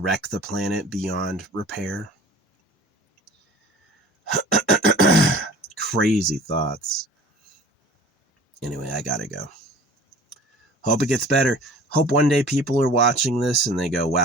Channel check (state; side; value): normal; both; correlation 0.45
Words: the planet beyond repair? Crazy thoughts. Anyway, I gotta go. Hope it gets better. Hope one day people are watching this and they go,